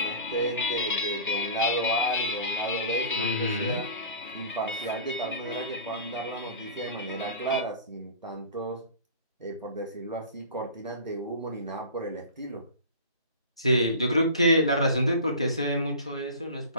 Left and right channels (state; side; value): inverted; both; correlation -0.37